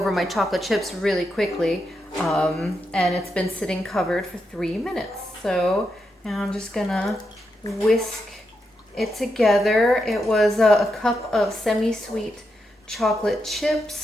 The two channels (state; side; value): normal; both; correlation 0.84